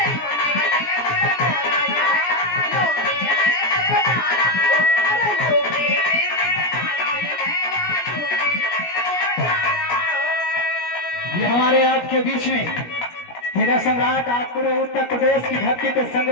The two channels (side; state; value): right; late; 17 ms